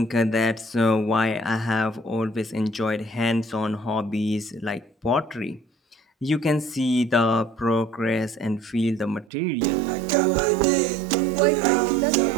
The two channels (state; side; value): drops out; left; at 9.2 s